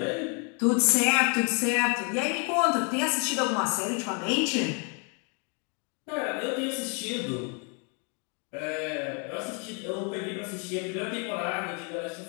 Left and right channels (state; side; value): quieter; right; 36.9 dB